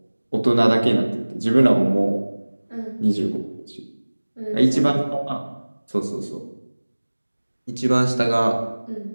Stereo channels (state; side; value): inverted; both; correlation -1.00